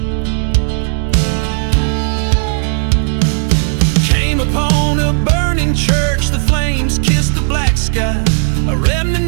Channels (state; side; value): silent; left; digital silence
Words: Came upon a burning church, the flames kissed the black sky, a